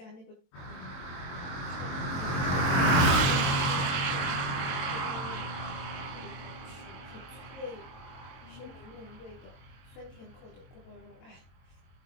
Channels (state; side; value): late; right; 23 ms